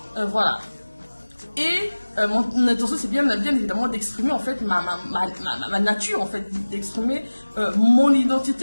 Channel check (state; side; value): inverted; both; correlation -1.00